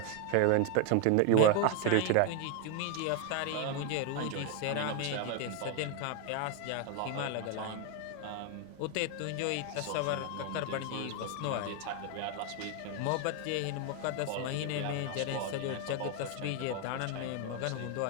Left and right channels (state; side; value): different; both; correlation 0.01